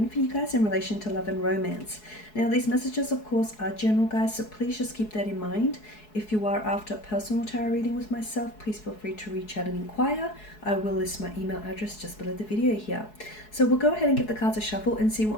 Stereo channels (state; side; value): late; right; 4.7 ms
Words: for you guys in relation to love and romance. Now, these messages, of course, are general, guys, so please just keep that in mind. If you are after a personal tarot reading with myself, please feel free to reach out and inquire. I will list my email address just below the video here. So we'll go ahead and give the cards a shuffle and see